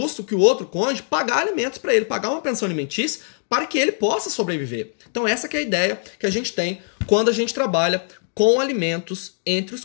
que o outro cônjuge pagar alimentos para ele, pagar uma pensão alimentícia para que ele possa sobreviver. Então essa que é a ideia que a gente tem quando a gente trabalha com alimentos entre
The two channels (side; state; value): right; silent; digital silence